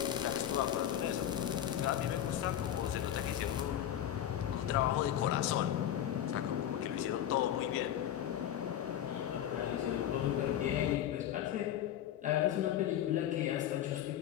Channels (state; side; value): quieter; right; 11.0 dB